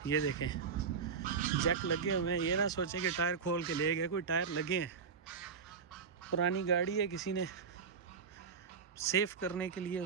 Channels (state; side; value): quieter; left; 5.9 dB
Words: ये देखें, जैक लगे हुए हैं। ये ना सोचे कि टायर खोल के ले गए, कोई टायर लगे हैं। पुरानी गाड़ी है, किसी ने सेफ करने के लिए